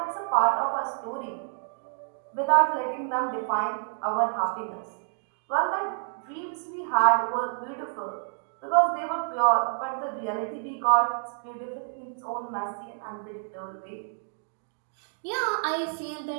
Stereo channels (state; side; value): silent; left; 59 dB below the other